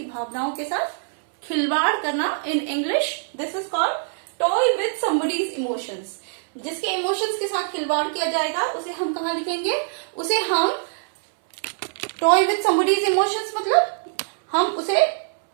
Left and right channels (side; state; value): left; silent; 63 dB below the other